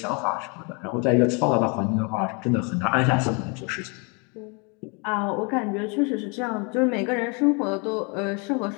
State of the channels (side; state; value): right; quieter; 32.9 dB